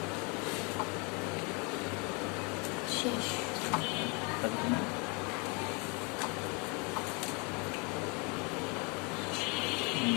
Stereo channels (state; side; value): quieter; right; 31.7 dB